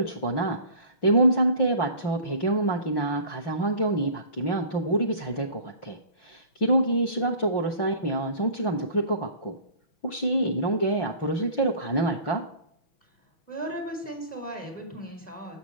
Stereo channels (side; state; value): right; late; 6.1 ms